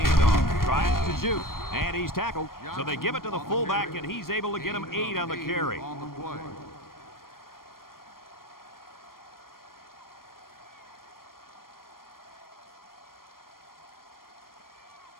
tries to shoot, and he's tackled. So they give it to the fullback, and he's able to get him 8 on the carry. On the play.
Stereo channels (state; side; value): late; right; 0.92 ms